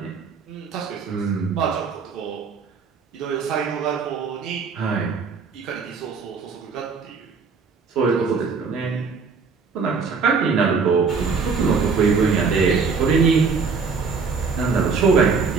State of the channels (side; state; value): left; quieter; 5.1 dB